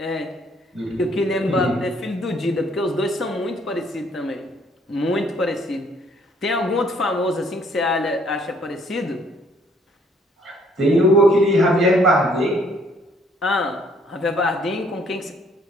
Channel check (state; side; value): normal; both; correlation 0.64